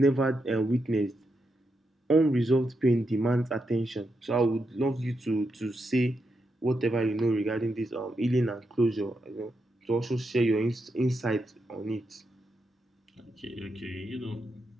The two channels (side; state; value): both; normal; correlation 0.84